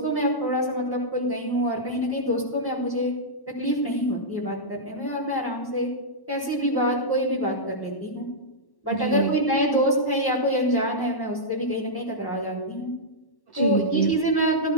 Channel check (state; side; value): late; right; 1.1 ms